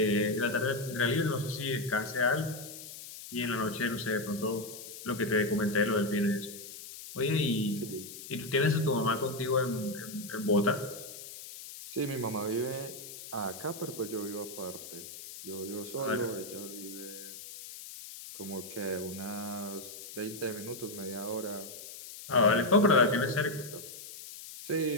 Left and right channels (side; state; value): left; noise; hiss, 12 dB below the sound